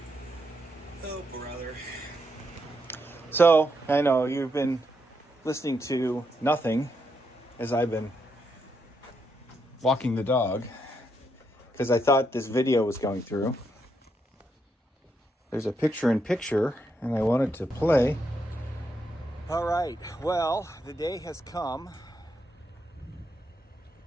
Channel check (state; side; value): normal; both; correlation 0.80